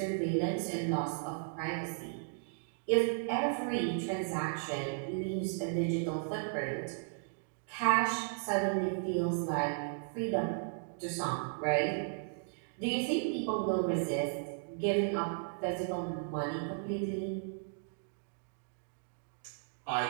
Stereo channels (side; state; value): left; silent; digital silence